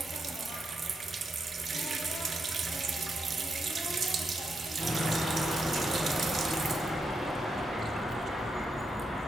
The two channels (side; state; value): both; normal; correlation 0.83